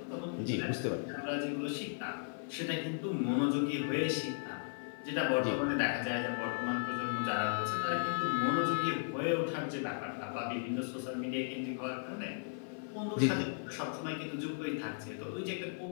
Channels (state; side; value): silent; right; 54 dB below the other